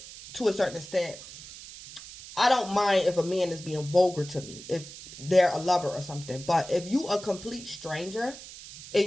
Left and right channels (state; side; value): noise; right; hiss, 15 dB below the sound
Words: to a certain extent, I don't mind if a man is being vulgar to me, if they're a lover or something. But if you a complete stranger